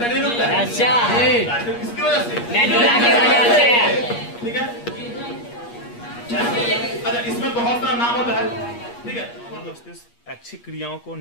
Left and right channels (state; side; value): late; right; 8.4 ms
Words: नहीं रुकता है। अच्छा, किसकी वजह से? मेडुला की वजह से, ठीक है। अच्छा, इसमें बहुत सारा नाम होता है, ठीक है। मस्तिष्क ऐच्छिक क्रियाओं को